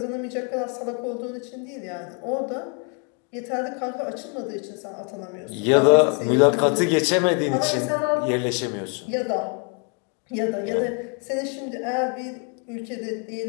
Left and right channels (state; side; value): quieter; right; 38.9 dB